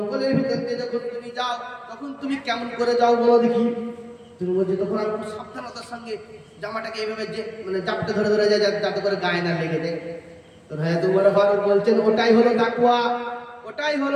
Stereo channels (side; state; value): both; identical; correlation 1.00